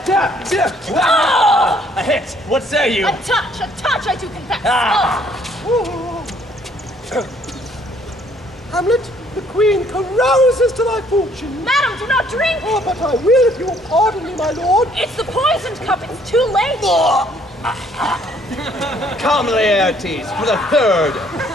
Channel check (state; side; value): normal; both; correlation 0.63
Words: A hit! What say you? A touch, I do confess. Hamlet, the queen carouses to thy fortune. Madam, do not drink! Oh, but I will if you will pardon me, my lord. It's the poisoned cup, it's too late! Come, Laertes, for the third.